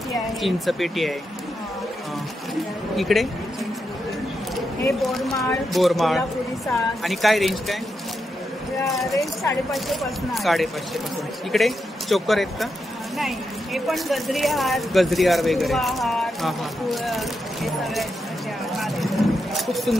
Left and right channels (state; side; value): normal; both; correlation 0.85